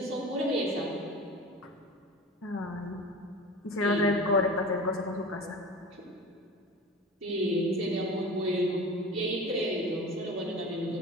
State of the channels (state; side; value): normal; both; correlation 0.35